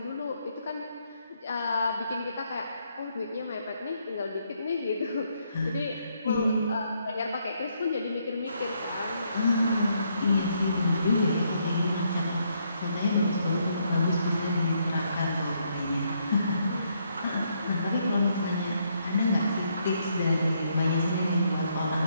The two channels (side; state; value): both; inverted; correlation -0.74